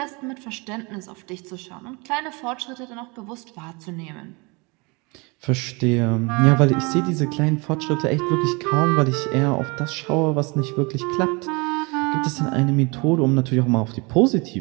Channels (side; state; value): left; quieter; 28.4 dB